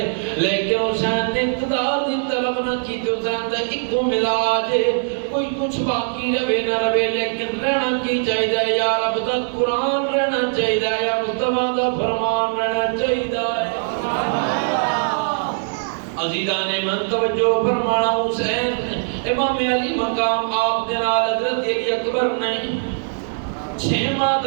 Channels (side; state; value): left; silent; digital silence